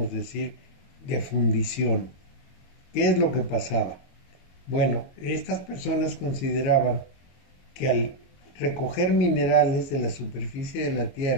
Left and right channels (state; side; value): late; right; 22 ms